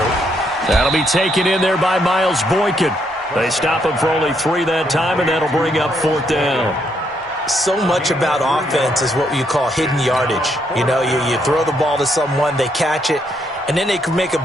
That'll be taken in there by Miles Boykin. They stop him for only 3 that time, and that'll bring up 4th down. So much about offense is what you call hidden yardage. You know, you throw the ball to someone, they catch it, and then they can make a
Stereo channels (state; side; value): normal; both; correlation 0.74